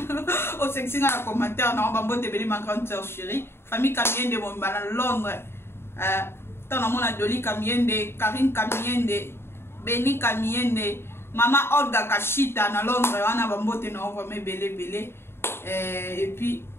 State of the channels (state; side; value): late; right; 0.12 ms